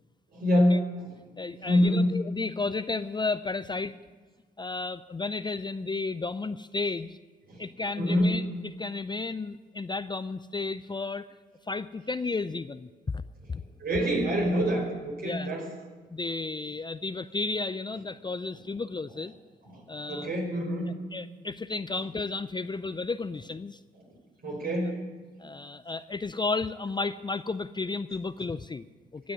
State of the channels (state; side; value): normal; both; correlation 0.71